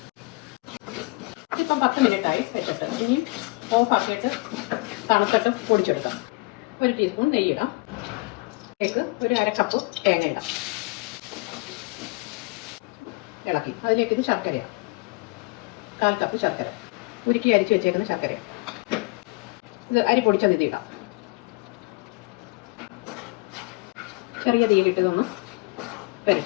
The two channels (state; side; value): quieter; right; 26.6 dB